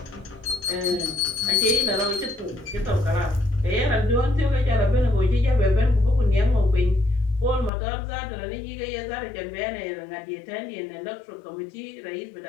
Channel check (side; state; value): right; drops out; at 7.7 s